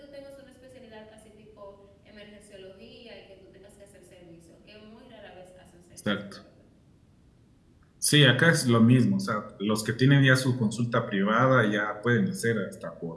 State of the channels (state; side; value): identical; both; correlation 1.00